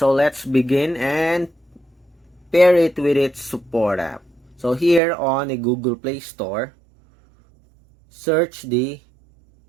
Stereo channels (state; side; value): drops out; left; at 5.0 s